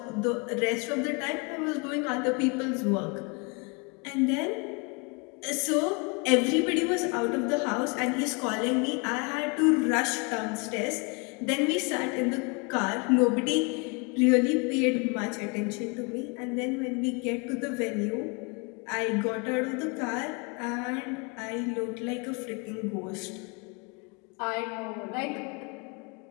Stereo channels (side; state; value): right; quieter; 31.4 dB